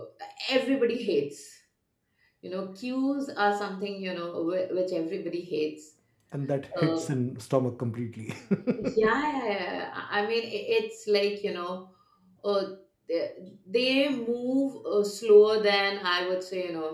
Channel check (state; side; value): identical; both; correlation 1.00